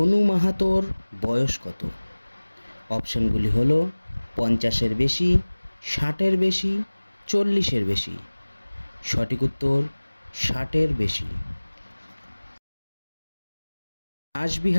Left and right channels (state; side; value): inverted; both; correlation -1.00